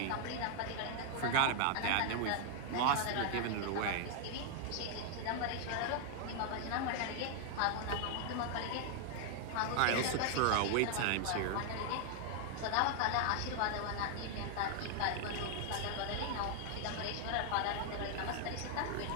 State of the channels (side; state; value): both; different; correlation 0.00